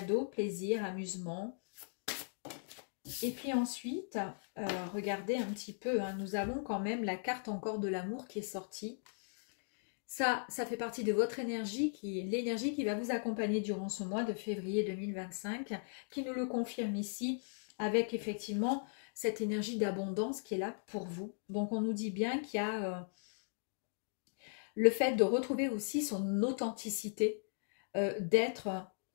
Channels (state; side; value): silent; right; digital silence